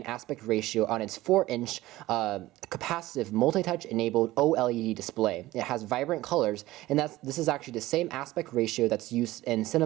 aspect ratio on its 4-inch capacitive multi-touch enabled OLED display. It has vibrant colors, and this is actually the same aspect ratio that's used in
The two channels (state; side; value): quieter; left; 17.2 dB